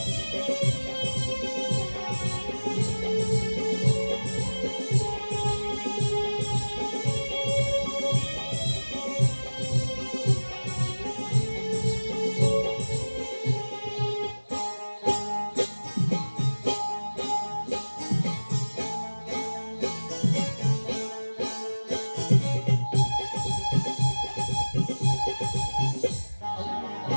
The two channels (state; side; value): inverted; both; correlation -1.00